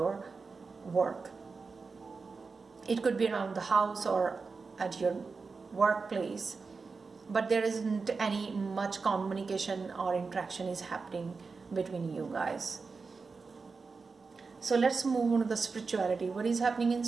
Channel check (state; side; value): quieter; left; 4.6 dB